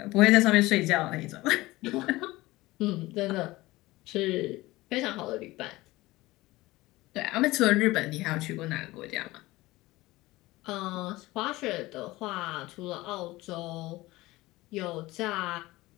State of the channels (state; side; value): quieter; right; 19.3 dB